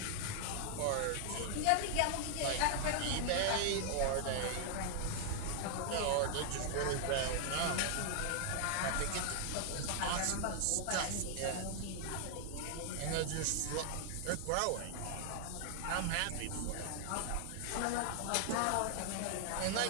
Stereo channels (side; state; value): both; different; correlation 0.00